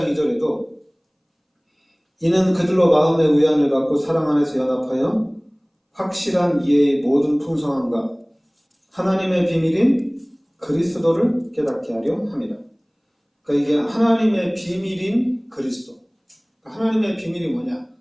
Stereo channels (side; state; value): both; identical; correlation 1.00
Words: 2절에도 이는 그들로 마음의 위안을 받고 사랑 안에서 연합하여 확실한 이해의 모든 풍성함과 하나님의 비밀인 그리스도를 깨닫게 하려 합니다. 그러니까 이게 하나님의 비밀인 그리스도. 하나님의 비밀이 뭐냐?